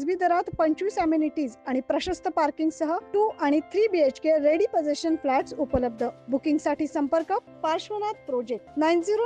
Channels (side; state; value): both; identical; correlation 1.00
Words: दरात 25 अमेनिटीज आणि प्रशस्त पार्किंग सह 2 आणि 3 BHK रेडी पोझिशन फ्लॅट्स उपलब्ध। बुकिंग साठी संपर्क पार्श्वनाथ प्रोजेक्ट